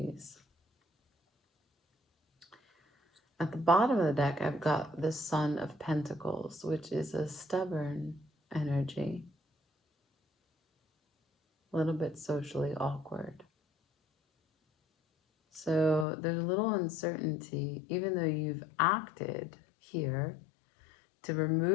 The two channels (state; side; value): drops out; right; at 16.1 s